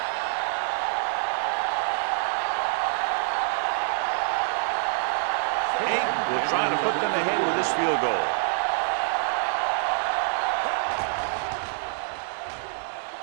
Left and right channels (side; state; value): left; silent; digital silence